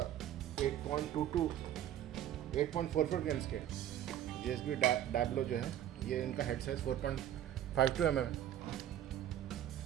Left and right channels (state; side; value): quieter; left; 11.3 dB